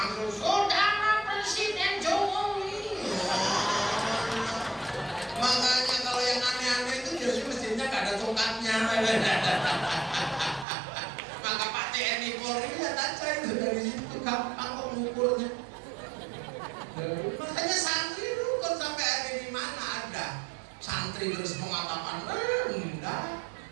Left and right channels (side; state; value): left; drops out; at 10.7 s